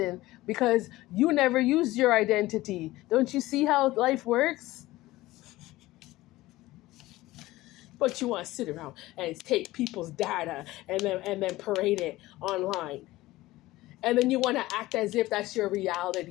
because you never used your identity. Don't you see how life works? But you want to sit around and take people's data and then parade it online. And then you want to act as if that's your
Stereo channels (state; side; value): quieter; right; 17.8 dB